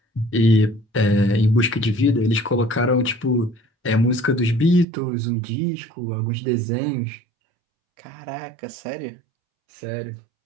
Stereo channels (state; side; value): drops out; left; at 4.9 s